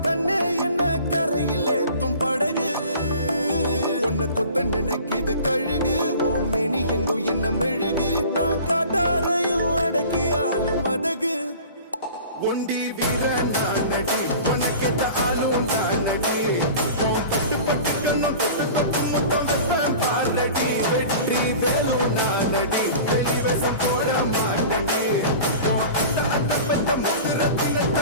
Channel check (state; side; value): inverted; both; correlation -0.41